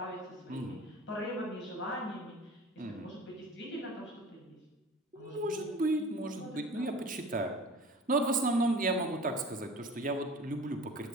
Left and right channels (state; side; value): normal; both; correlation 0.41